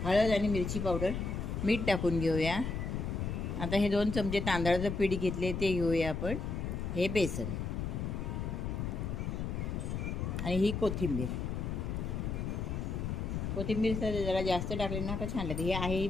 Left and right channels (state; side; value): noise; left; rumble, 3 dB below the sound